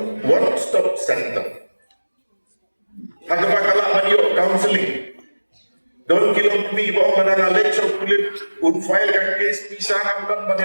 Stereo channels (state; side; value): inverted; both; correlation -1.00